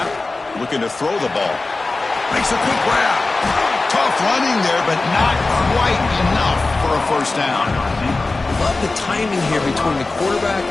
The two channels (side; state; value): right; quieter; 3.4 dB